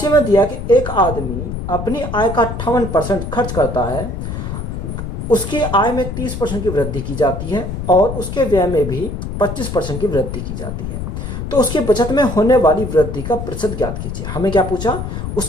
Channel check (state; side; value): noise; left; rumble, 5 dB below the sound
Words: में दिया कि एक आदमी अपनी आय का 58% खर्च करता है, उसकी आय में 30% की वृद्धि की जाती है और उसके व्यय में भी 25% की वृद्धि की जाती है। तो उसकी बचत में होने वाली वृद्धि का प्रतिशत ज्ञात कीजिए। हमें क्या पूछा?